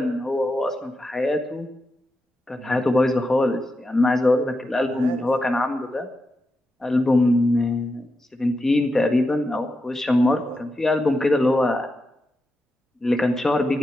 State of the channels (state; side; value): normal; both; correlation 0.88